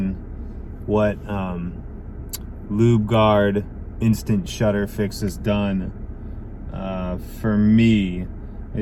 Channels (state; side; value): identical; both; correlation 1.00